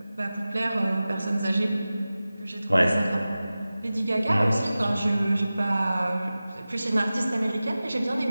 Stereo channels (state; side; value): inverted; both; correlation -0.96